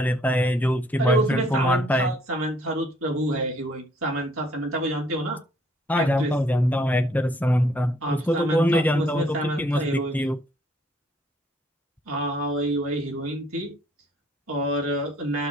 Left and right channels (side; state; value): both; normal; correlation 0.64